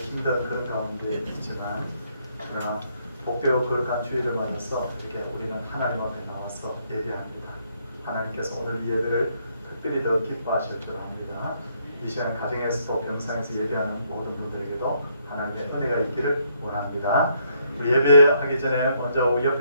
그런 가운데 있지만, 그러나 복되고 거룩한 주일을 맞아서 이렇게 우리는 하나님 앞에 나와서 예배합니다. 하나님께서 오늘 이 예배를 특별히 더 기뻐하실 줄 압니다. 이 시간 가정에서도 병상에서 예배하는 모든 분들에게도 하나님의 은혜가 있기를 원합니다. 우리 예배하기 전에 먼저 우리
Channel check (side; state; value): both; inverted; correlation -0.72